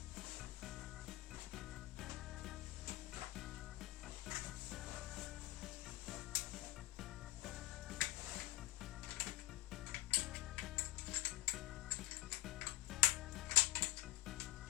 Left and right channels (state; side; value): quieter; right; 17.2 dB